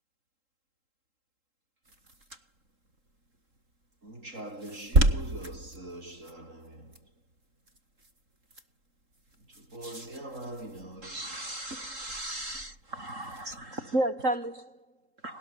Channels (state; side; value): late; left; 3.8 ms